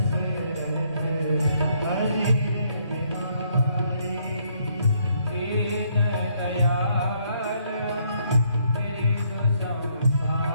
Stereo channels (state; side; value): inverted; both; correlation -0.70